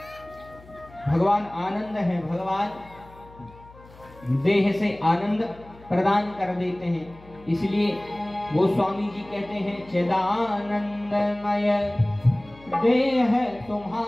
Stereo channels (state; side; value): noise; left; hum, 22 dB below the sound